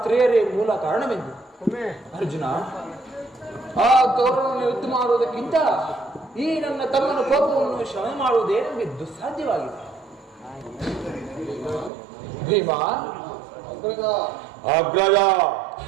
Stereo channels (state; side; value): drops out; left; at 11.9 s